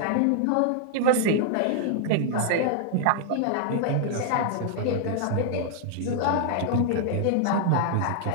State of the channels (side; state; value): both; different; correlation -0.01